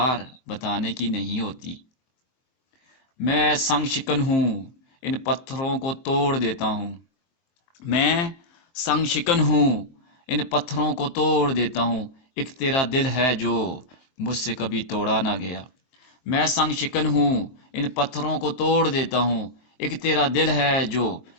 بتانے کی نہیں ہوتی۔ میں سنگ شکن ہوں، ان پتھروں کو توڑ دیتا ہوں۔ میں سنگ شکن ہوں، ان پتھروں کو توڑ دیتا ہوں۔ ایک تیرا دل ہے جو مجھ سے کبھی توڑا نہ گیا۔ میں سنگ شکن ہوں، ان پتھروں کو توڑ دیتا ہوں۔ ایک تیرا دل ہے جو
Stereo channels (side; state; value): right; late; 24 ms